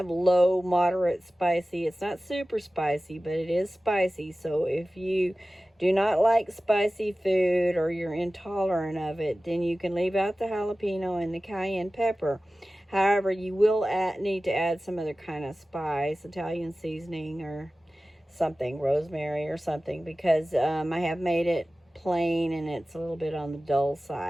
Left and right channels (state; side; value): normal; both; correlation 0.96